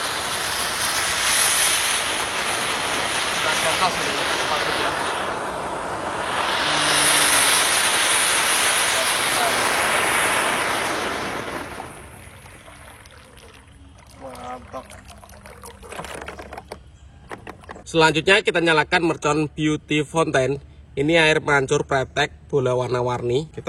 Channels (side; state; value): both; identical; correlation 1.00